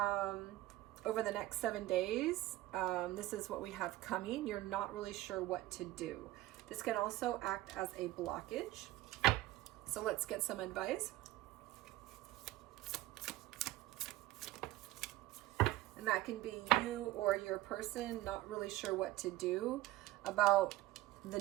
the next 7 days, this is what we have coming. You're not really sure what to do. This can also act as a blockage. So let's get some advice. And that can be you or your person not really sure what to do about the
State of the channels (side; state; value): left; quieter; 16.7 dB